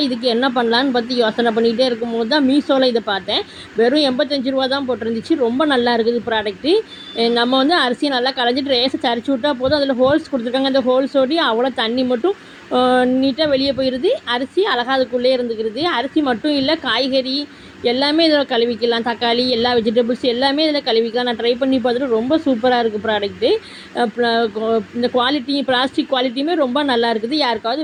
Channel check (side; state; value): both; identical; correlation 1.00